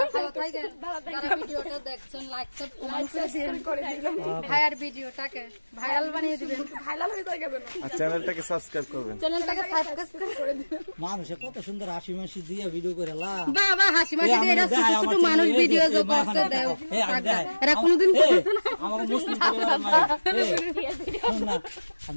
যারা ভিডিওটা দেখছেন লাইক করে দিলাম ভাইয়ার ভিডিওটাকে ভাইরাল বানিয়ে দিবেন, ভাইরাল হয়ে যাবে না আর চ্যানেলটাকে সাবস্ক্রাইব করবেন। চ্যানেলটাকে সাবস্ক্রাইব করে দিবেন। মানুষে কত সুন্দর হাসি মাসি দিয়ে ভিডিও করে লা বাবা হাসি মাসি দিয়ে এরা ছোট ছোট মানুষ ভিডিও যে করতে দেয় এরা কোনদিন করছে না। আমার মুসলিম পরিবারের মায়ের, শোন না,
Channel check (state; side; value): inverted; both; correlation -1.00